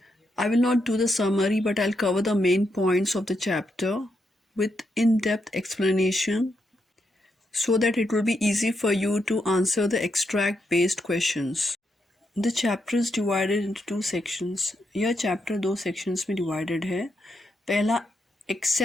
I will not do the summary, but I'll cover the main points of the chapter with in-depth explanation so that it will be easy for you to answer the extract-based questions. The chapter is divided into two sections. यह chapter दो sections में divided है. पहला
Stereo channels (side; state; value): both; normal; correlation 0.81